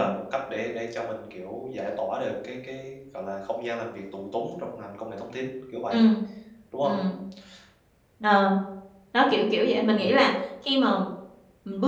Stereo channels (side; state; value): both; identical; correlation 1.00